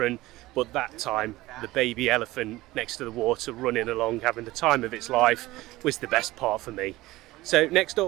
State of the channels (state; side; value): quieter; left; 18.4 dB